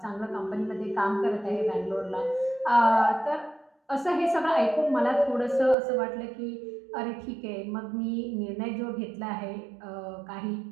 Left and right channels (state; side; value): drops out; left; at 5.8 s